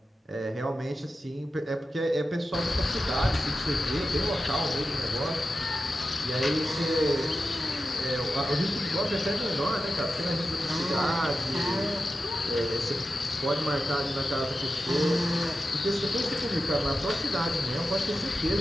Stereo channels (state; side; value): normal; both; correlation 0.92